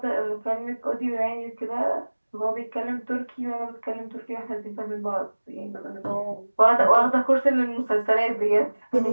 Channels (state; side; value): inverted; both; correlation -1.00